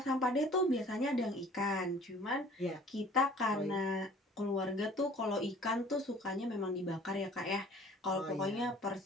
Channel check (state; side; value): normal; both; correlation 0.50